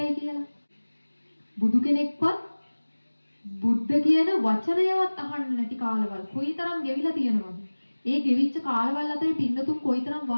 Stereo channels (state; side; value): inverted; both; correlation -1.00